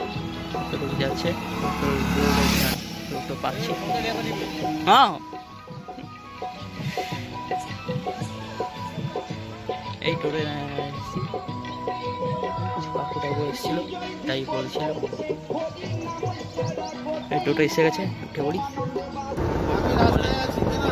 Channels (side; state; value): both; identical; correlation 1.00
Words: টোটো যাচ্ছে, টোটো পাচ্ছি। হ্যাঁ, এই টোটো কাকুটাও এসেছিল, তাই বলছিল। এই টোটো এসে গেছে, উঠে পড়ি।